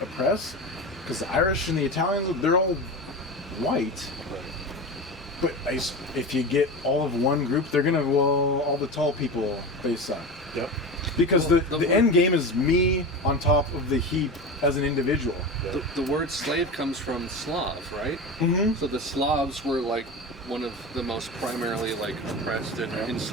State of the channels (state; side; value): normal; both; correlation 0.26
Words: oppress. Because the Irish and the Italians, they're all white. But if you get all of one group, they're going to... Well, all the tall people, they suck. Yep. Because the end game is me on top of the heap as an individual. The word slave comes from Slav, right? Mm-hmm. So the Slavs were like one of the most primarily like oppressed and